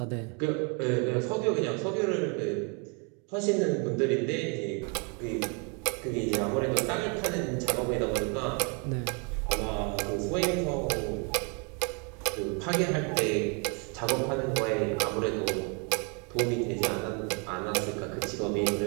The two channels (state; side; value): quieter; left; 35.1 dB